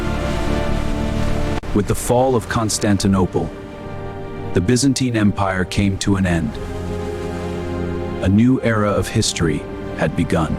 With the fall of Constantinople, the Byzantine Empire came to an end. A new era of history had begun.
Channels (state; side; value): identical; both; correlation 1.00